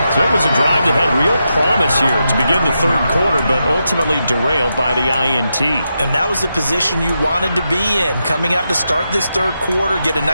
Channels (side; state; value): both; inverted; correlation -0.86